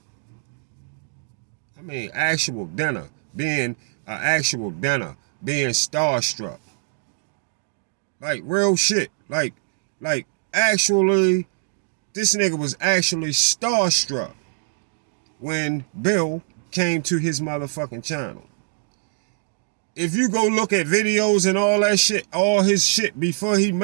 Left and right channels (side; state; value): left; silent; digital silence